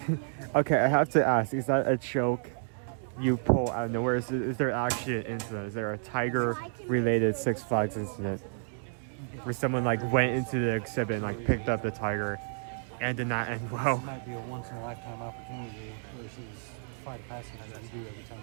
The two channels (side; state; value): left; silent; digital silence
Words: Okay, I have to ask, is that a joke you pull out of nowhere? Is there actually an incident? Is there a tiger-related Six Flags incident where someone like went into the exhibit and like picked up the tiger and did not end well? This might be a once-in-a-lifetime opportunity versus flight of passage that we do every time